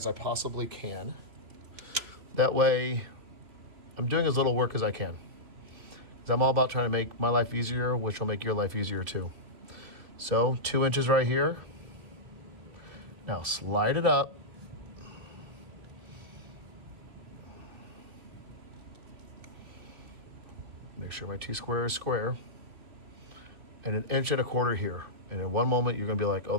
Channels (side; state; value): left; late; 2.9 ms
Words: I possibly can. That way I'm doing as little work as I can. Because I'm all about trying to make my life easier, which will make your life easier too. So 2 inches right here. Now slide it up. Make sure my T-square is square. And 1 1/4 inches here. And in one moment, you're gonna be like, oh,